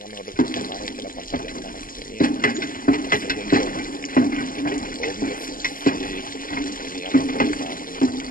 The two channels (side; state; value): right; late; 0.41 ms